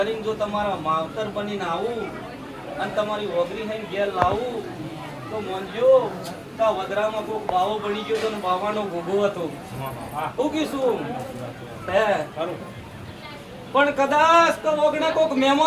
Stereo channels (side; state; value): both; identical; correlation 1.00